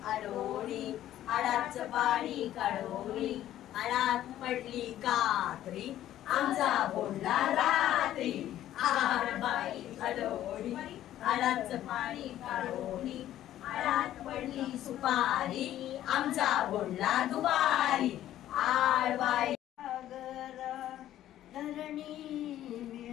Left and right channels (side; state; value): right; quieter; 12.7 dB